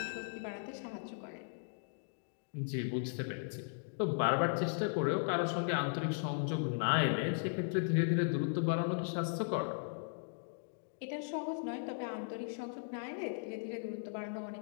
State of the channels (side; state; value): right; silent; digital silence